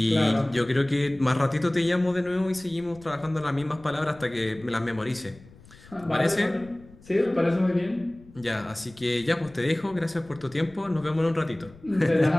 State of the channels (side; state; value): left; noise; rumble, 23 dB below the sound